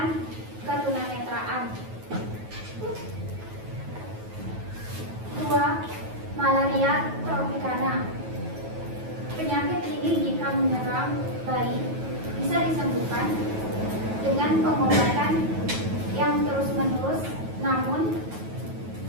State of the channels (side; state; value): left; late; 9.3 ms